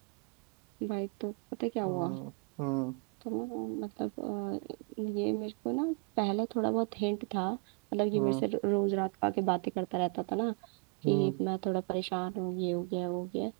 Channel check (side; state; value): left; quieter; 30.2 dB